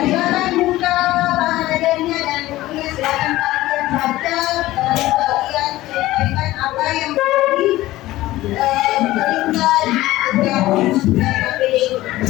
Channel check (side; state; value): right; quieter; 16.6 dB